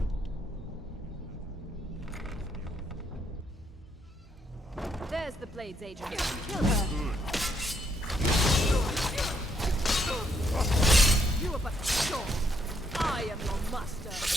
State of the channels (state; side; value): normal; both; correlation 0.74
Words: There's the Blades agent. Kill her. You are but a short. I am your master.